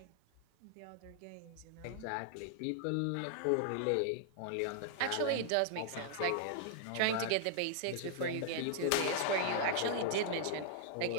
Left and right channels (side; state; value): both; different; correlation -0.01